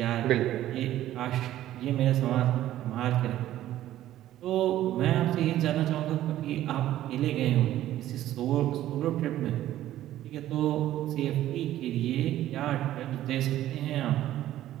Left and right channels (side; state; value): left; quieter; 13.4 dB